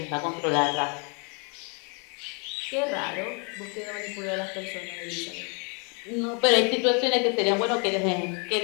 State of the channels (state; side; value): quieter; right; 35.8 dB